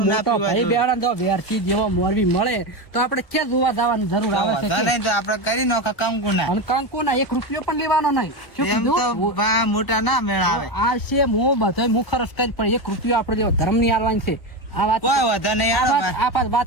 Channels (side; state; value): right; late; 1.2 ms